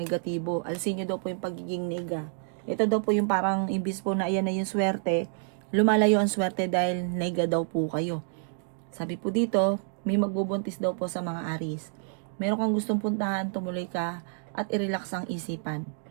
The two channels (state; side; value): silent; left; digital silence